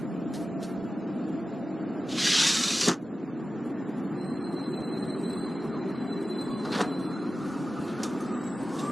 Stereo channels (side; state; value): both; normal; correlation 0.95